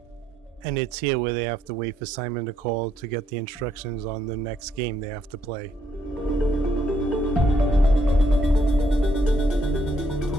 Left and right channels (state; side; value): normal; both; correlation 0.72